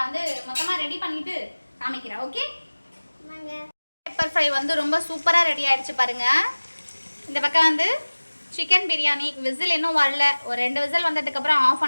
வந்து மொத்தமா ரெடி பண்ணிட்டு காமிக்கிறேன். ஓகே, பெப்பர் ஃப்ரை வந்து ரொம்ப சூப்பரா ரெடி ஆயிடுச்சு பாருங்க. இந்த பக்கம் வந்து சிக்கன் பிரியாணி விசில் இன்னும் வரல, ஒரு 2 விசில் வந்ததுக்கு அப்புறம் ஆஃப்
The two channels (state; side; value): inverted; both; correlation -1.00